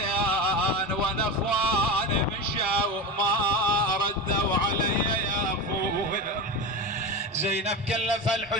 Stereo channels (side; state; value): both; normal; correlation 0.23